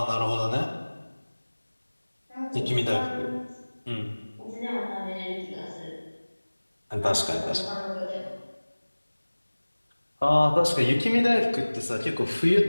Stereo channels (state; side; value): inverted; both; correlation -1.00